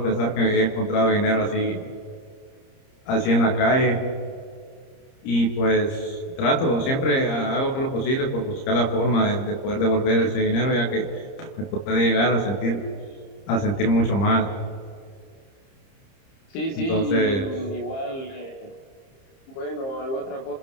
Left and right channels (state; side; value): late; right; 30 ms